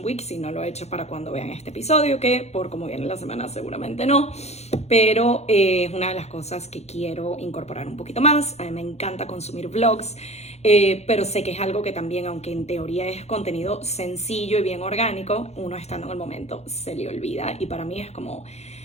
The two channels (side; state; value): right; late; 0.31 ms